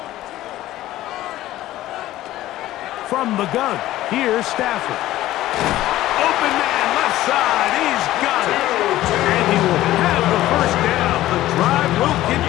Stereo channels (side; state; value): right; quieter; 15.0 dB